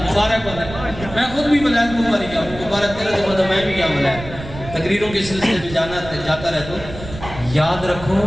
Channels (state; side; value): noise; right; rumble, 12 dB below the sound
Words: مبارک ہوتا ہے میں خود بھی ملائد مبارک گیا مبارک تیرے تو میں بھی گیا ملائد تقریروں کے سلسلے میں جاتا رہتا ہوں یاد